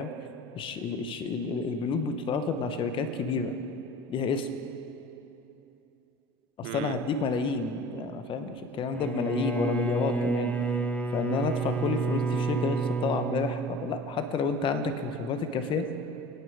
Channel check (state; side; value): normal; both; correlation 0.41